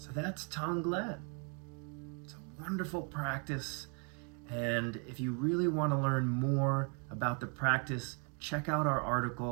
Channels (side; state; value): left; quieter; 37.1 dB